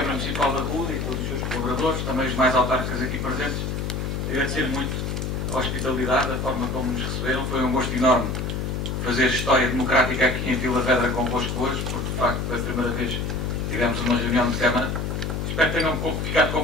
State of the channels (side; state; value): left; noise; hum, 2 dB below the sound